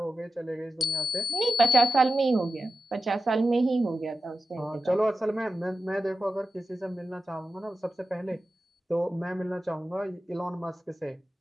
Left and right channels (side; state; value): both; normal; correlation 0.92